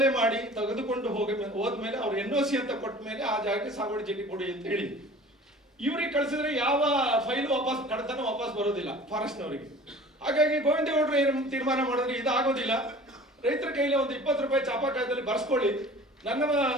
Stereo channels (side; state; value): both; normal; correlation 0.44